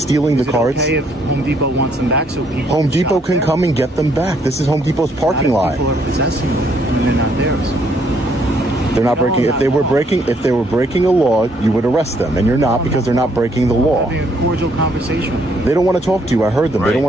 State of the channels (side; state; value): both; normal; correlation 0.69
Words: the carts. Okay, if Home Depot wants them back, so people. Home Depot can come and get them back. This is Home Depot's parking lot. People are possessing them, and they're not theirs. They're not breaking. If they were breaking a law, you would arrest them, and you're not because they're not breaking the law. Having a cordial conversation. They don't want to talk to you. I heard them. They don't